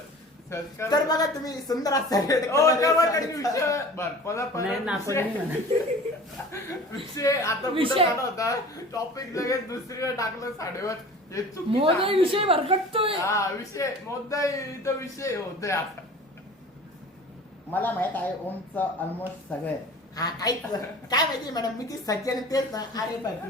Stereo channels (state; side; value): normal; both; correlation 0.42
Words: search कर. तर बघा तुम्ही सुंदर असं red हो, color तेव्हा साडीचा- त्यांनी विषय- बरं, परत नाही नाको विषय- नाही म्हणत. विषय आता कुठं विषय- झाला होता टॉपिक लगेच दुसरीकडे टाकलं साडीवर हे चुकीचं मोदी आहे. विषय भरकटतोय हा विषय मुद्दा इथं विषय होतोय आता मला माहित आहे ओमचं ऑलमोस्ट सगळं. हा काहीच काय माहिती मॅडम मी ती सज्जन तेच ना. अरे